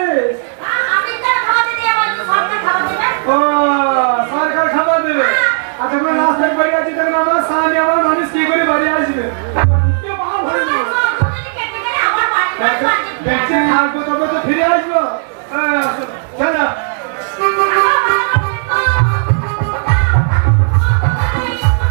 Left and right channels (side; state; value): left; silent; digital silence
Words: আমি তো খাবার দিতে যাবো, তো সরকার খাবার দেবে। ও সরকার খাবার দেবে। আর তখন রাস্তায় বাড়ি আছে, তখন আমার সামনে আমার মানুষ কি করে বাড়ি আসবে? দেখছে থাকবো তবে তো ফিরে আসবো। চলো